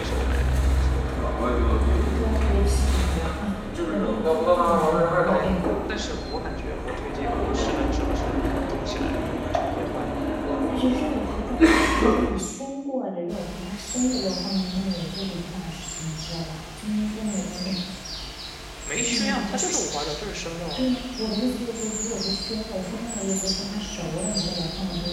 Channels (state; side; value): identical; both; correlation 1.00